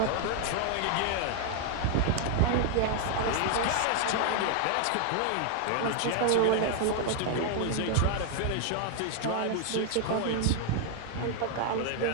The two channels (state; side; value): different; both; correlation 0.00